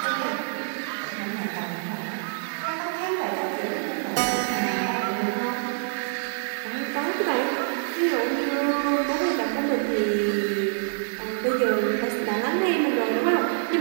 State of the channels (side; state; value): left; silent; 55 dB below the other